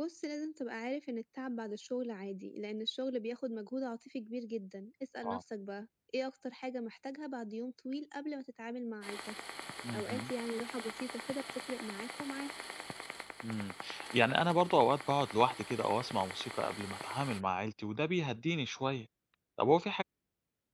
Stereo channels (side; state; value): both; identical; correlation 1.00